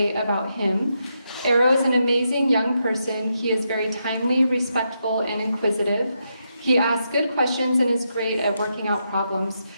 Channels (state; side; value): inverted; both; correlation -0.83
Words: about him. Arrow is an amazing young person. He is very timely, respectful, and inquisitive. He asks good questions and is great at working out problems.